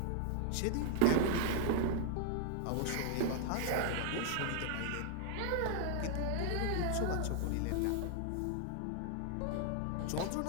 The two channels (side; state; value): both; different; correlation 0.00